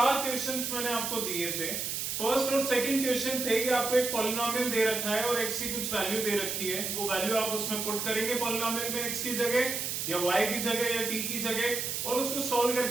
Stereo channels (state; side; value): noise; right; hiss, 2 dB below the sound